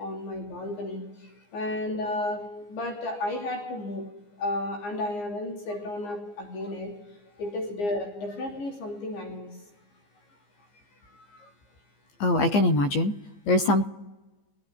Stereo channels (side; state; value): right; late; 15 ms